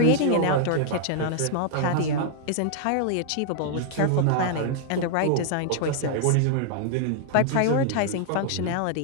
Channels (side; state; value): both; different; correlation 0.00